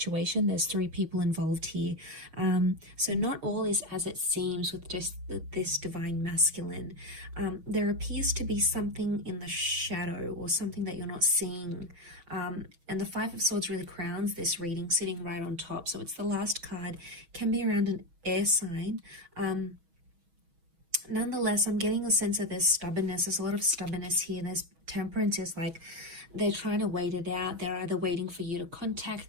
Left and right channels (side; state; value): left; late; 6.2 ms